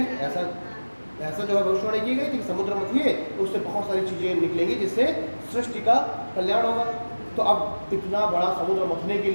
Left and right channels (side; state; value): both; inverted; correlation -1.00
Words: ऐसा जो है भविष्यवाणी की गई थी कि समुद्र मथिए, उससे बहुत सारी चीज़ें निकलेंगी जिससे सृष्टि का कल्याण होगा। तो अब इतना बड़ा समुद्र मथने के